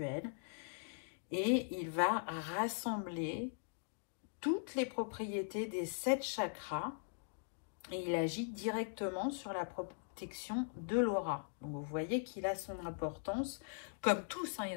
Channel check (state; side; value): silent; right; digital silence